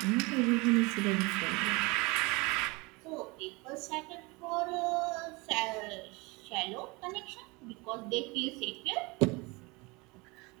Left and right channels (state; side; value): quieter; left; 25.9 dB